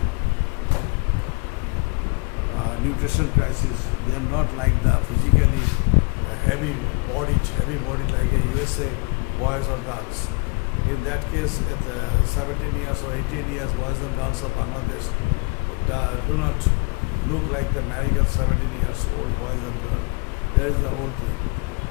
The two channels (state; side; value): quieter; right; 30.4 dB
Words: nutrition crisis, they are not like the physically heavy bodied like a USA boys or girls. In that case, at 17 years or 18 years, boys and girls of Bangladesh do not look like the American 17 years old boys and girls. That is the whole thing.